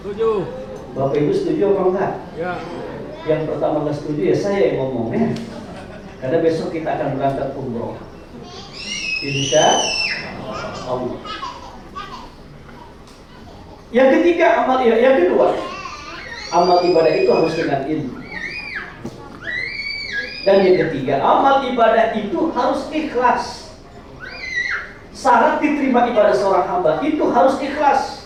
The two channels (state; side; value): identical; both; correlation 1.00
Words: Setuju. Bapak Ibu setuju apa enggak? Ya. Yang pertama nggak setuju ya saya yang ngomongnya. Karena besok kita akan berangkat umroh. Insya Allah. Yang ketiga, yang kedua, amal ibadah itu harus dengan ilmu. Dan yang ketiga, amal ibadah itu harus ikhlas. Syarat diterima ibadah seorang hamba itu harus